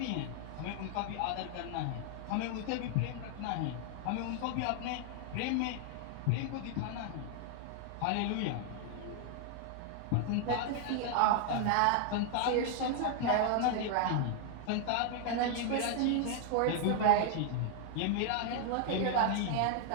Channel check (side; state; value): both; different; correlation 0.00